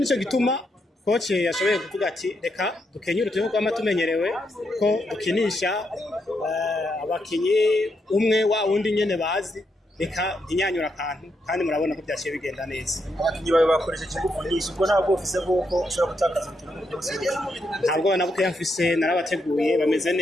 gituma coach yashoboye kuvuga ati reka dukenyure turi kwa matumenyerewe ko dukinisha abakinyi umwe wa wundi nyene bazi reka inyanyura akantu kandi murabona ko byaciye bigenda neza abakinyi bawe bakoresheje ingufu nyinshi ubwo ntabwo ufise bwoko ushobora gutakaza ikintu byose ntabwo nabuke yamfise narabateguye bameze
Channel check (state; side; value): normal; both; correlation 0.80